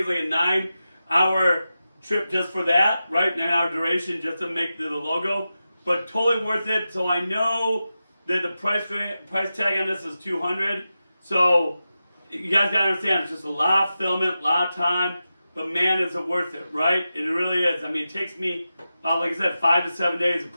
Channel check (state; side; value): inverted; both; correlation -0.92